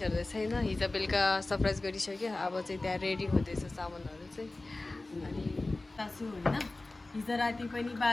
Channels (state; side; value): quieter; right; 3.0 dB